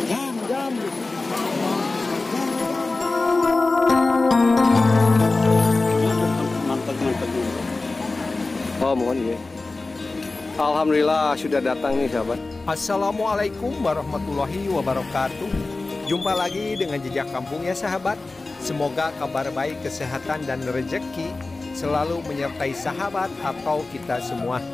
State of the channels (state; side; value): quieter; right; 3.4 dB